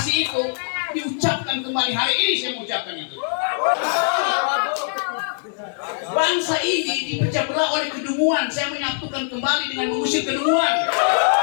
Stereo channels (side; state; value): right; silent; 62 dB below the other